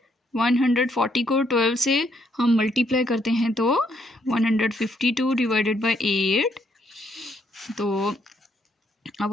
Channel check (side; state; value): both; normal; correlation 0.72